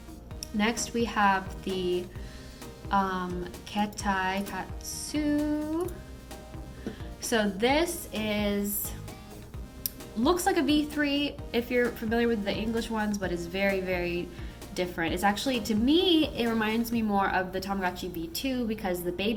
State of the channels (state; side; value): identical; both; correlation 1.00